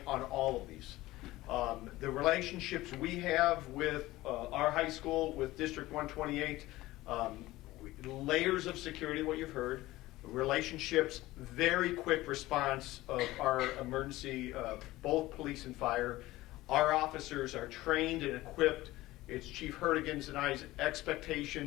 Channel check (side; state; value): right; quieter; 17.8 dB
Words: on all of these. The relationships we have with our high school, with District 128, layers of security, what you've heard, relationships, very quick response of our emergency, both police and fire. Our officers are trained and equipped. It's Chief Hertigan's and I's